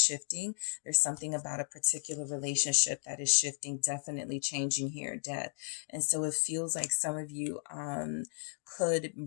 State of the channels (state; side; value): silent; right; digital silence